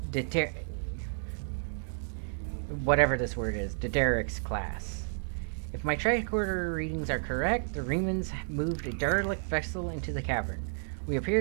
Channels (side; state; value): left; silent; digital silence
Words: whatever this word is, Dederic's class. If my tricorder readings are correct, the Riemanns moved a derelict vessel into the cavern. We